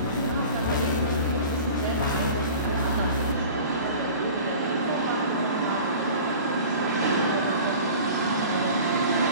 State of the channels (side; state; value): both; inverted; correlation -0.41